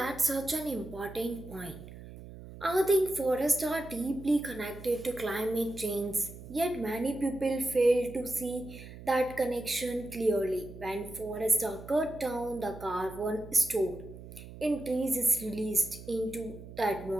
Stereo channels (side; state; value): right; noise; hum, 15 dB below the sound